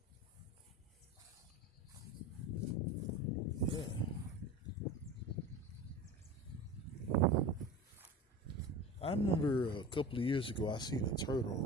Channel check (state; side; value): normal; both; correlation 0.32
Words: I remember a couple of years ago I seen a